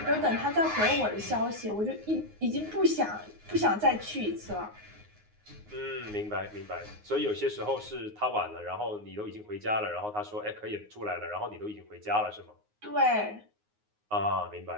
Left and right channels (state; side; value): late; left; 9.6 ms